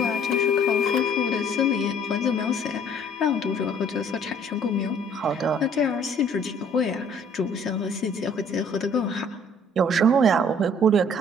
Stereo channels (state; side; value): normal; both; correlation 0.57